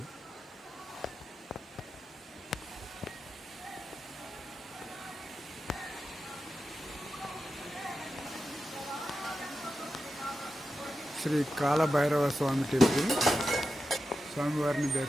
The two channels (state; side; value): normal; both; correlation 0.91